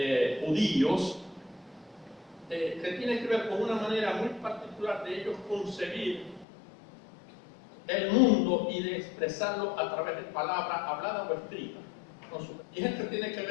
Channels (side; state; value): right; drops out; at 6.5 s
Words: judíos, que tiene que ver con una manera muy particular de ellos concebir el mundo y de expresarlo a través de palabras habladas o escritas. Y esto tiene que